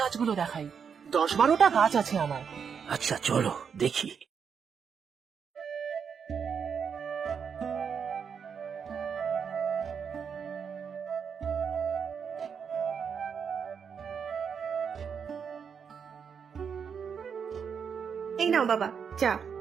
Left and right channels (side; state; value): left; quieter; 6.8 dB